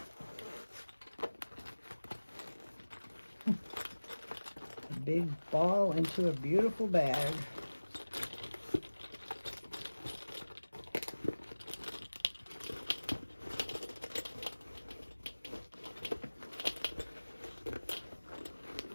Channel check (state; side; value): inverted; both; correlation -1.00